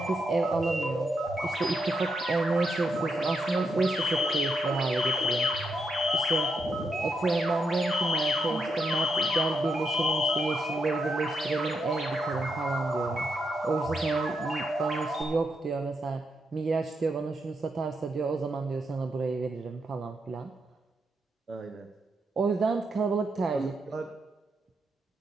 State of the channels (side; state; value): both; normal; correlation 0.81